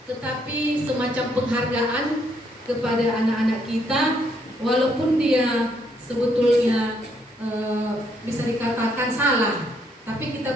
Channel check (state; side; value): normal; both; correlation 0.71